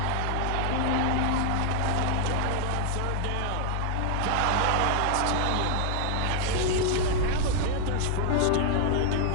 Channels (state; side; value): different; both; correlation 0.00